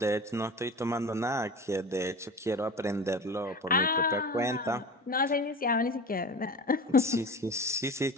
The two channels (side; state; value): both; normal; correlation 0.33